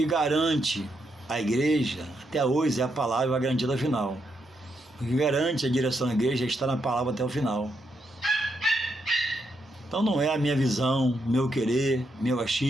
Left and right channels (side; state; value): both; normal; correlation 0.80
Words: garante a igreja, até hoje, é a palavra, vai garantir até o final. O que garante a direção da igreja é estar na palavra até o final. Então não é a minha visão, meu querer, meu